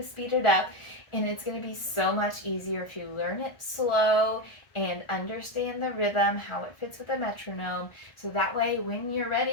speed it up, and it's going to be so much easier if you learn it slow and understand the rhythm, how it fits with the metronome. So that way, when you're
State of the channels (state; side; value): late; right; 1.4 ms